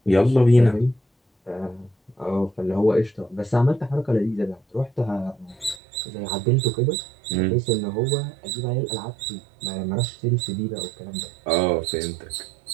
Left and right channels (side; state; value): left; drops out; at 5.8 s